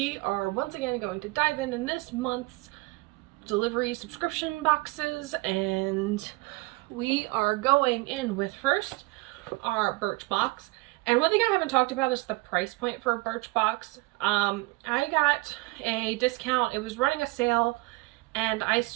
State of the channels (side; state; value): left; quieter; 23.7 dB